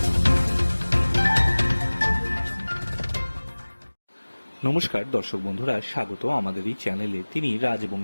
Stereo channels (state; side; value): inverted; both; correlation -1.00